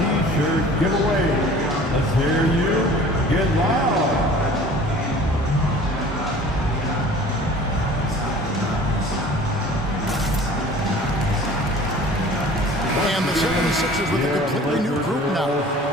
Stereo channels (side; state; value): both; normal; correlation 0.46